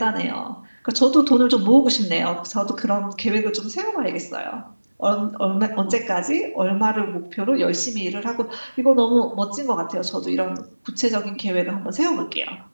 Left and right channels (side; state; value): both; inverted; correlation -1.00